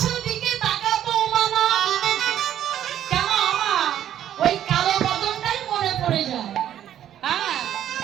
দিকে তাকাবো মানা। কেন আমার ওই কালো বদনটাই মনে পড়ে যায়। হ্যাঁ,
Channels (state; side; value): quieter; left; 11.0 dB